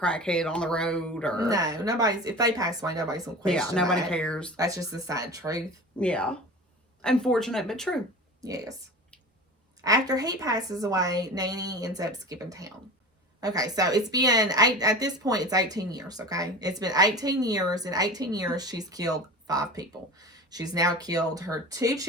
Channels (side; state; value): both; normal; correlation 0.34